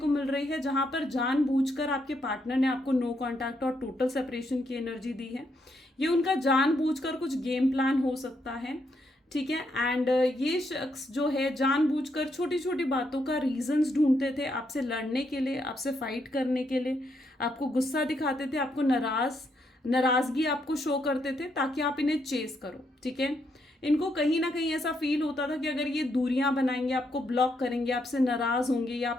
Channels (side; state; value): both; normal; correlation 0.77